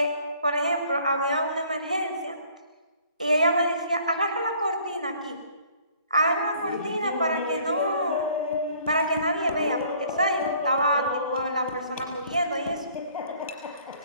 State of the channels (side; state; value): both; inverted; correlation -0.57